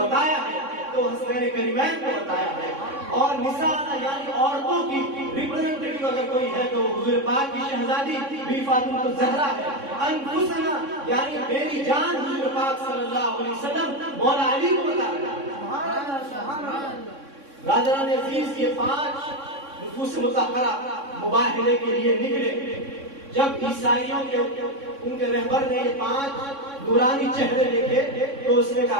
ہے تو حسنین کریمین کو بتایا ہے. اور نساءنا یعنی عورتوں کی ریپرزنٹیٹیو اگر کوئی ہے تو حضور پاک کی شہزادی بی فاطمہ الزہرا ہے. انفسنا یعنی میری جان حضور پاک صلی اللہ علیہ وسلم مولا علی کو بتا رہا ہے. برادران عزیز یہ 5 نفوس مطہرہ مباہلے کے لیے نکلے. جب عیسائیوں کے ان کے رہبر نے یہ 5 نورانی چہرے دیکھے تو اس نے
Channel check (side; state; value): left; late; 3.6 ms